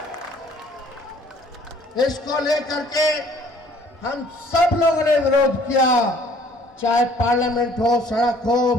इसको लेकर के हम सब लोगों ने विरोध किया, चाहे पार्लियामेंट हो, सड़क हो,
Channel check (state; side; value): normal; both; correlation 0.57